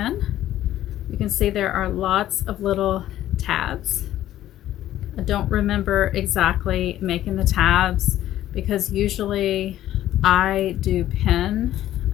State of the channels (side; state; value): right; quieter; 13.1 dB